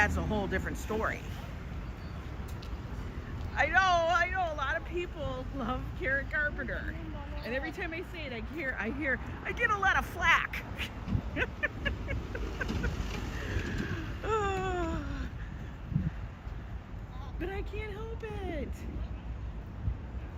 a whole different story. I know, a lot of people love Karen Carpenter. And every time I say it, I get a lot of flack. But I can't help it.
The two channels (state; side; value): identical; both; correlation 1.00